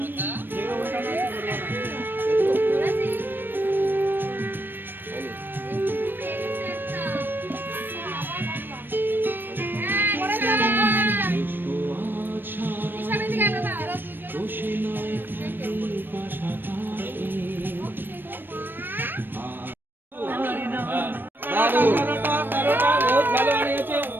তেরোটা বহুত ভালো বানিয়েছে।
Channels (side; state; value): left; late; 0.095 ms